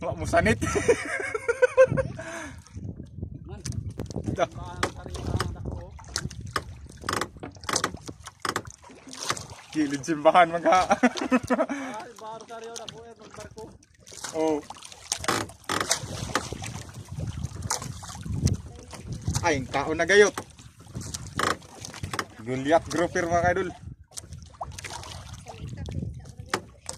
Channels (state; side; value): identical; both; correlation 1.00